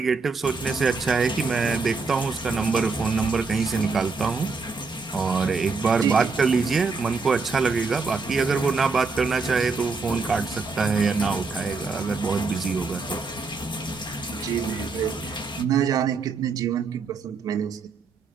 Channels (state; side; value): quieter; left; 4.5 dB